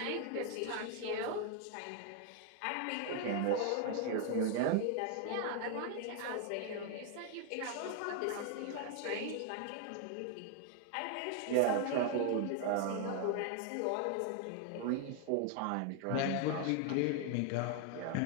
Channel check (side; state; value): both; different; correlation 0.00